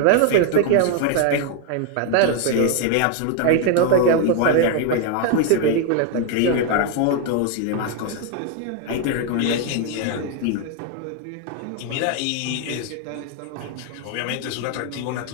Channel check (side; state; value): both; different; correlation 0.01